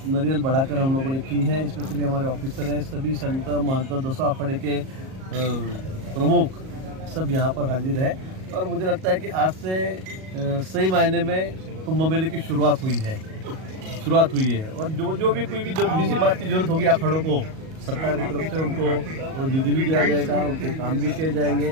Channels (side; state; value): left; late; 38 ms